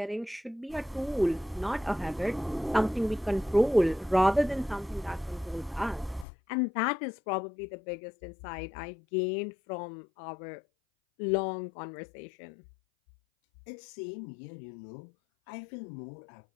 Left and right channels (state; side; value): drops out; right; at 6.2 s